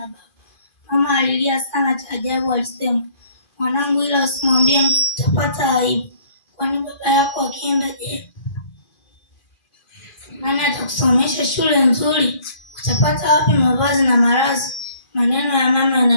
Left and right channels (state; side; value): late; right; 2.4 ms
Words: baba, mama alilia sana. Cha ajabu alisema, mwanangu, ila usimwambie mtu, utapata aibu. Kwani baba yako akienda je? Nani atakusomesha shule nzuri? Utapata wapi mavazi na malazi? Maneno ya mama